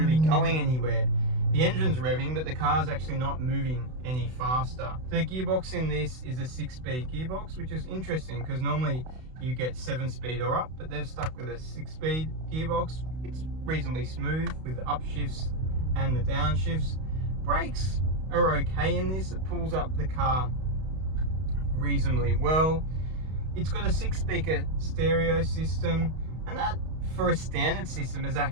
going anywhere. The engine's revving, but the car's actually not moving any faster. The gearbox in this is a 6-speed gearbox, which is interesting because normally you get 7-speed or up, but they've stuck with a 6-speed gearbox. It's reasonably smooth with the upshifts and the downshifts. Brakes are okay in this. It pulls up the car reasonably well. It's got a 6-speaker stereo system, and that for a standard system is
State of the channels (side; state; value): left; late; 32 ms